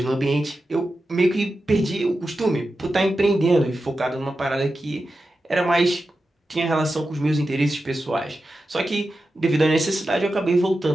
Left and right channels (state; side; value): normal; both; correlation 0.91